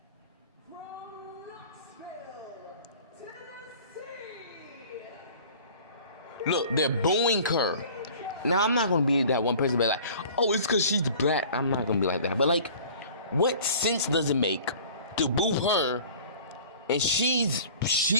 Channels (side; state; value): both; inverted; correlation -0.46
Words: Look, they're booing her. Now, I'm not going to be that one person be like, oh, it's because she's black. I'm not going to be like that. But, like, what sense does it make to boo her? And she was